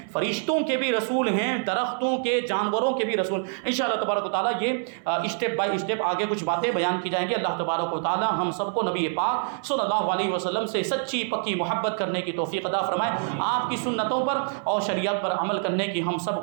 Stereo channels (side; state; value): left; silent; 61 dB below the other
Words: فرشتوں کے بھی رسول ہیں, درختوں کے, جانوروں کے بھی رسول. انشاءاللہ تبارک و تعالیٰ یہ اسٹیپ بائی اسٹیپ آگے کچھ باتیں بیان کی جائیں گی. اللہ تبارک و تعالیٰ ہم سب کو نبی پاک صلی اللہ علیہ وسلم سے سچی پکی محبت کرنے کی توفیق عطا فرمائے, آپ کی سنتوں پر اور شریعت پر عمل کرنے کی ہم سب